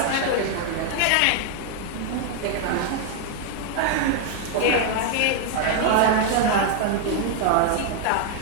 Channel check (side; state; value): both; different; correlation 0.01